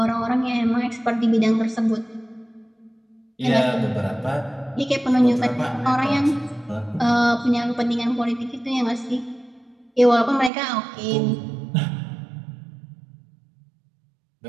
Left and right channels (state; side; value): drops out; left; at 10.5 s